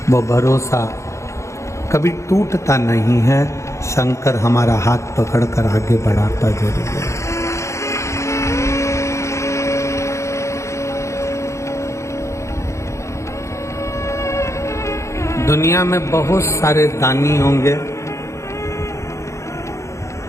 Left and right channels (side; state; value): right; late; 0.14 ms